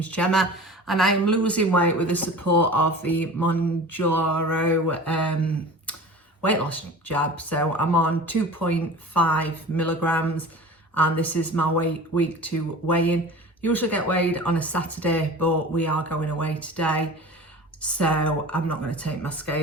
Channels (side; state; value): both; normal; correlation 0.38